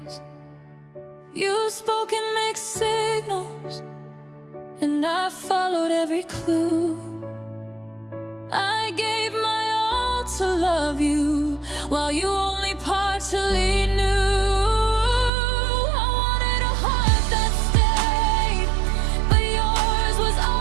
You spoke in mixed signals, and I followed every clue. I gave my all to love you while you only partially knew. I wanted a heart that stayed, but yours was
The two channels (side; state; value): left; drops out; at 15.3 s